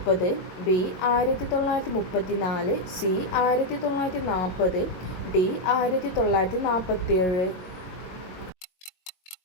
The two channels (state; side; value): late; right; 22 ms